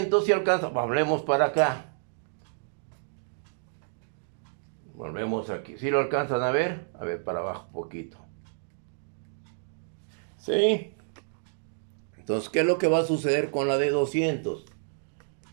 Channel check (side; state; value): left; silent; digital silence